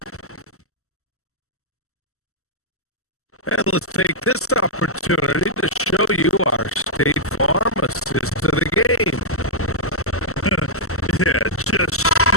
And let's take this opportunity to show you our State Farm assist to the game. Yeah, just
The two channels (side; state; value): right; late; 0.63 ms